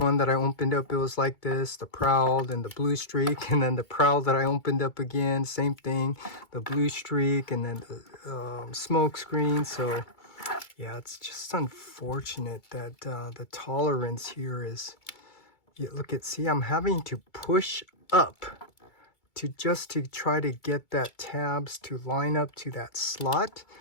that I opened up, it was like this, the Prowl and the Bluestreak, and then the Prowl that I opened up again, same thing, the Bluestreak, and then the smoke screen. So yeah, it's just unfortunate that the tolerance here is, yeah, look at, see, I'm having to push up to try to get that tabs to line up to that slot.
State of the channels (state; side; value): late; right; 2.2 ms